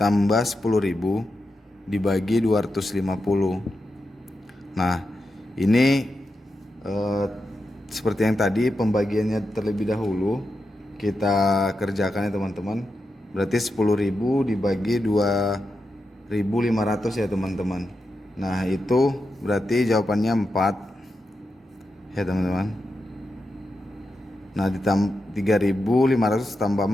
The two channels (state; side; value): normal; both; correlation 0.88